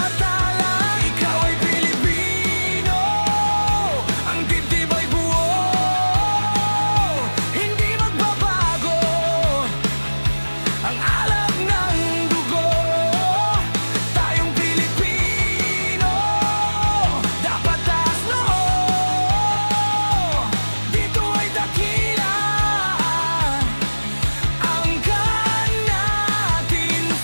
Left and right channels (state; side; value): inverted; both; correlation -1.00